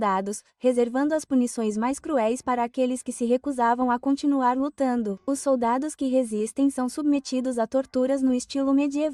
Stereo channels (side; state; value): both; identical; correlation 1.00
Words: reservando as punições mais cruéis para aqueles que se recusavam a continuar lutando. Os soldados que resistem são submetidos a torturas no estilo